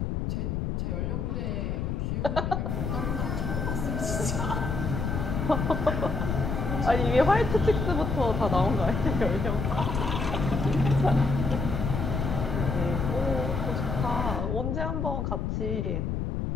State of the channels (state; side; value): noise; left; rumble, 1 dB below the sound